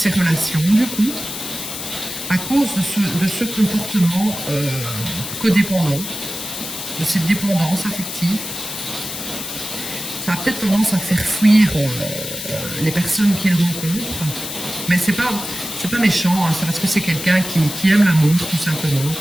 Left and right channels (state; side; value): noise; left; hiss, 7 dB below the sound